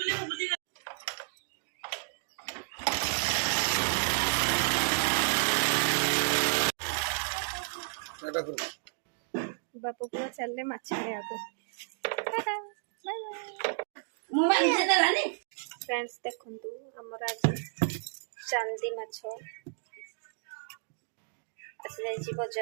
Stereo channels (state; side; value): silent; left; digital silence